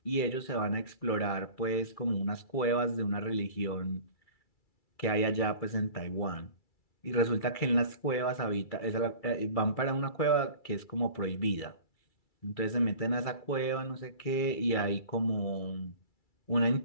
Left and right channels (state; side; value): late; right; 2.3 ms